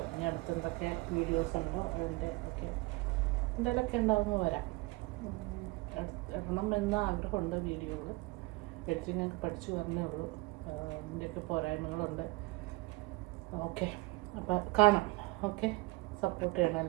ഇനി അടുത്തെന്തൊക്കെ വീഡിയോസ് ഉണ്ടോ അതിൻ്റെ ഒക്കെ എന്തെങ്കിലുമൊക്കെ ഉണ്ടാവുമ്പോൾ വരാം. ഇടണം എന്ന ആഗ്രഹമുണ്ട് വീഡിയോകൾ. എഡിറ്റിങ്ങൊക്കെ പഠിച്ചു വരണേ ഉള്ളൂ. ഇതിൻ്റെയൊക്കെ പോരായ്മകളുണ്ട്. ഓക്കെ, അപ്പം കാണാം. ഓക്കെ, സപ്പോർട്ട് ചെയ്യണം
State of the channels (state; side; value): quieter; left; 23.1 dB